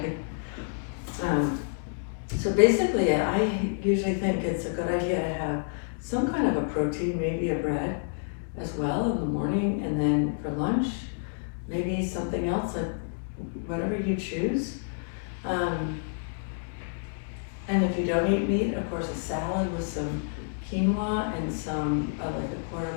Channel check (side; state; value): right; silent; digital silence